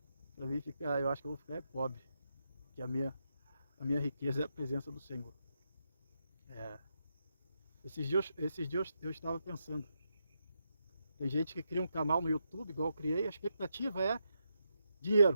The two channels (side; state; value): both; inverted; correlation -0.83